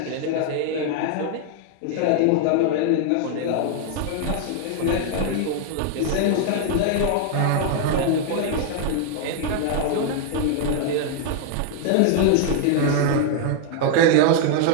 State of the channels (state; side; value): different; both; correlation 0.00